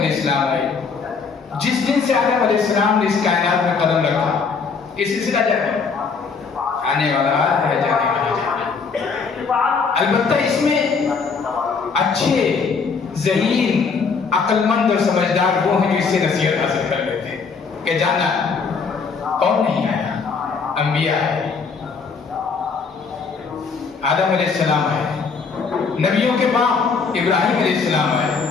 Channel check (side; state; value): right; quieter; 5.2 dB